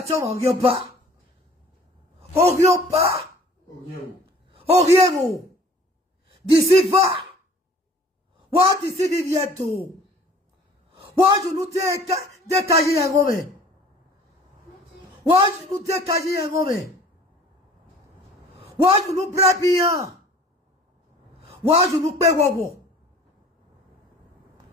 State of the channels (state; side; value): normal; both; correlation 0.50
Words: tant on pas Oriero d'ici va what d'ici bientôt what je nous décailler un homme what je nous décailler un homme what je nous brabia what je nous paie wowo